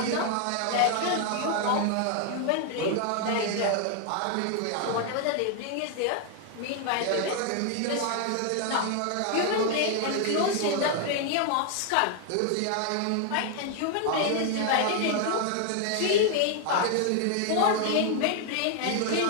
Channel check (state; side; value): different; both; correlation 0.00